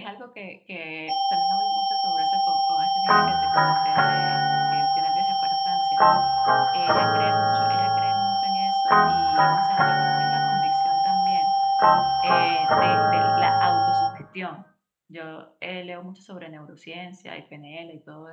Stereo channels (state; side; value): identical; both; correlation 1.00